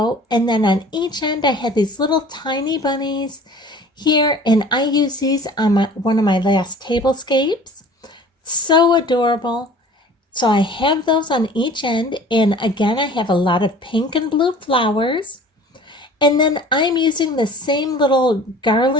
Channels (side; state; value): both; normal; correlation 0.46